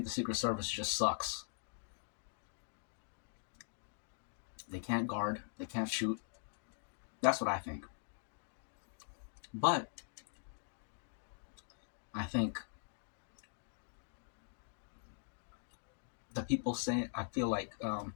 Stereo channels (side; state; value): right; silent; digital silence